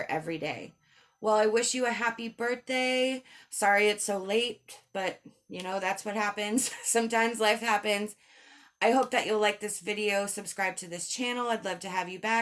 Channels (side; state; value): both; identical; correlation 1.00